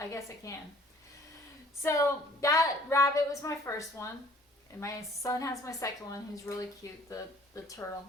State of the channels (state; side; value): normal; both; correlation 0.55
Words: guess I can. So that rabbit was my first one. And my son has my second one, who's really cute, the turtle.